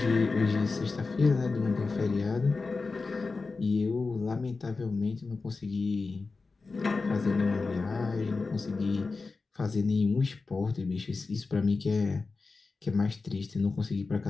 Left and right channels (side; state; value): right; quieter; 4.1 dB